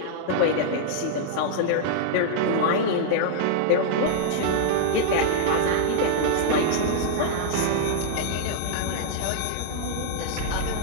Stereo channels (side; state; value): both; different; correlation -0.01